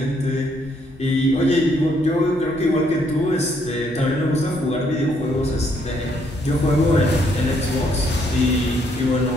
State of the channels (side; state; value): both; normal; correlation 0.70